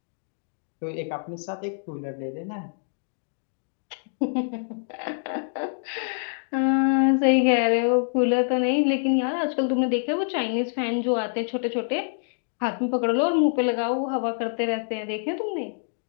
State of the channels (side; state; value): right; silent; digital silence